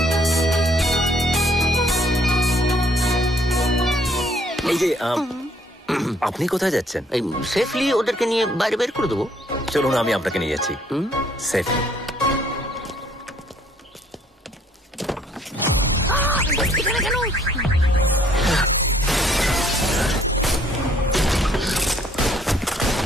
এই যে আপনি কোথায় যাচ্ছেন? এই সেফলি ওদেরকে নিয়ে বাইরে বের করে দেবো। চলুন, আমি আপনাকে নিয়ে যাচ্ছি সেফলি।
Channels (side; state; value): both; normal; correlation 0.63